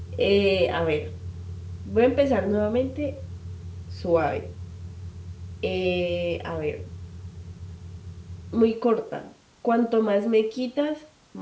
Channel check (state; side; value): identical; both; correlation 1.00